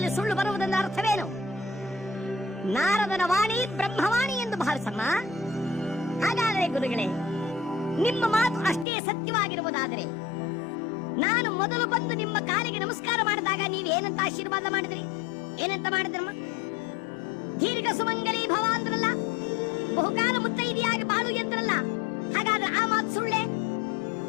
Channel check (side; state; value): right; drops out; at 8.8 s